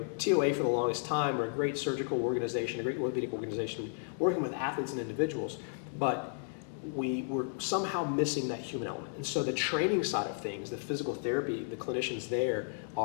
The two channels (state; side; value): silent; right; digital silence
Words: TOA for the longest time, we're a great surgical organization, a great orthopedic organization, working with athletes and individuals, but we were somehow missing that human element. And so the training side of things, the physical therapy, the clinicians there,